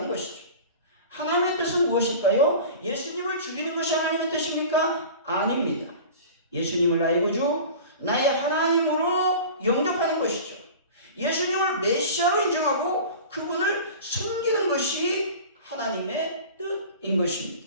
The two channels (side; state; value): both; inverted; correlation -0.38